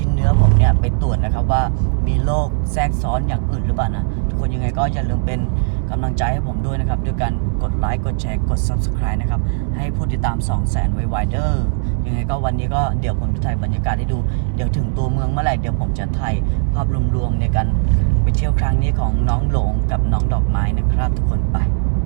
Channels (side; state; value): left; silent; digital silence